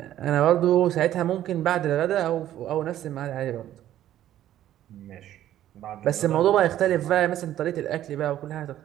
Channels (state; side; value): quieter; left; 12.4 dB